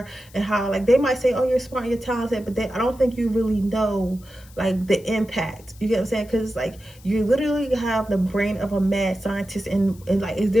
and how, like, they might say, oh, you're smart, you're talented, but I don't think you really know like the impact. You get what I'm saying? Because like you literally have the brain of a mad scientist, and like it's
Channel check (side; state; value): left; noise; hiss, 25 dB below the sound